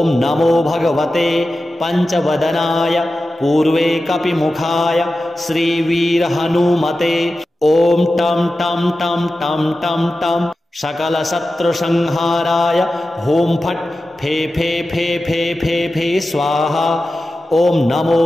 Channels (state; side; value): normal; both; correlation 0.93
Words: नमो भगवते पंचवदनाय पूर्वे कपिमुखाय श्रीवीरहनुमते। ओम टम टम टम टम टम टम सकल शत्रु संहाराय होम फट फे फे फे फे फे फे स्वाहा। ओम नमो